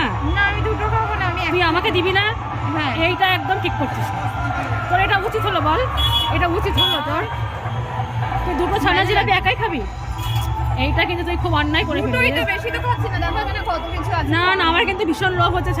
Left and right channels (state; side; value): identical; both; correlation 1.00